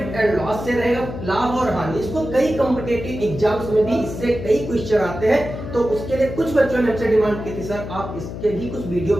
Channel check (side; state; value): left; noise; hum, 8 dB below the sound